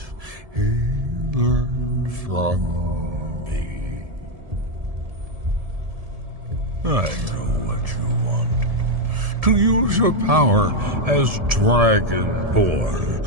he learned from me. I know what you want. To use your power as Dragonborn,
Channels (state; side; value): late; left; 1.7 ms